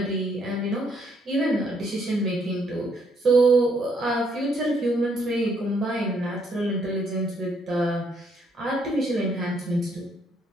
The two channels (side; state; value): both; normal; correlation 0.70